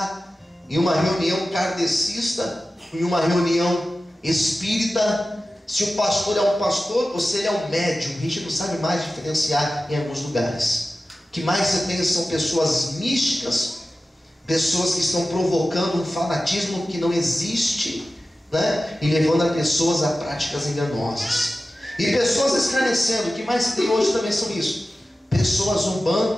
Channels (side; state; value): both; normal; correlation 0.95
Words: em uma reunião kardecista, em uma reunião espírita. Se o pastor é um pastor, você é um médium. A gente não sabe mais diferenciar em alguns lugares. O que mais você tem são pessoas místicas, pessoas que estão provocando um fanatismo que não existe, né? E levando as pessoas a práticas enganosas. E pessoas escarnecendo. O que mais tem hoje também são isso: pessoas